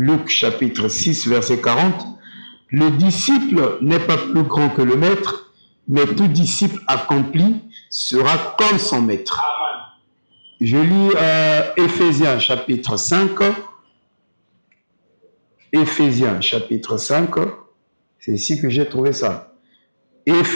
chapitre 6, verset 40. Le disciple n'est pas plus grand que le maître, mais tout disciple accompli sera comme son maître. Je lis Éphésiens chapitre 5. Éphésiens chapitre 5. C'est ici que j'ai trouvé ça.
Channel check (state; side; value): inverted; both; correlation -1.00